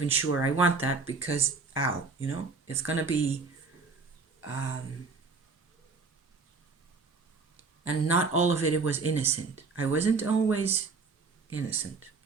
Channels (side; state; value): left; quieter; 4.4 dB